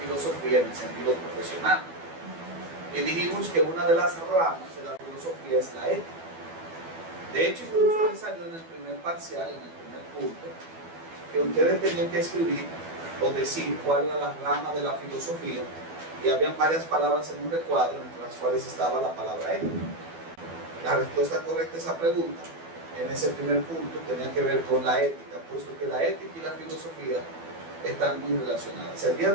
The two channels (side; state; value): left; late; 12 ms